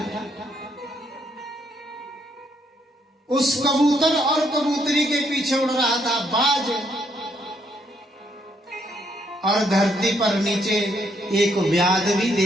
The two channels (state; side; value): normal; both; correlation 0.72